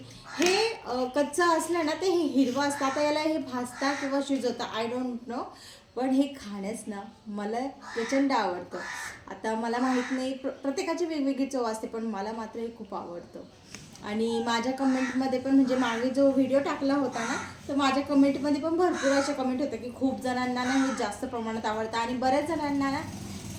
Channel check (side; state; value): both; identical; correlation 1.00